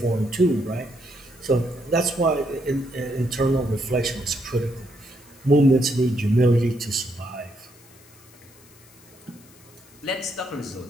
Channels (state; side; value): noise; left; hiss, 25 dB below the sound